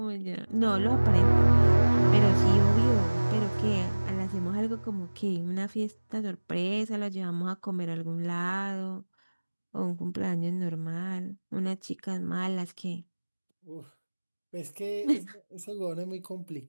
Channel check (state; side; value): inverted; both; correlation -1.00